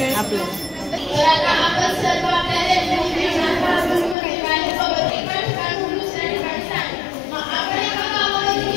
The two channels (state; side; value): drops out; right; at 4.2 s